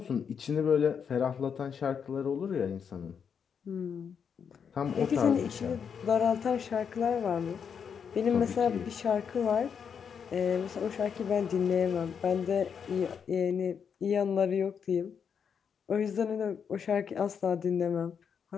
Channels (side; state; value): right; quieter; 7.0 dB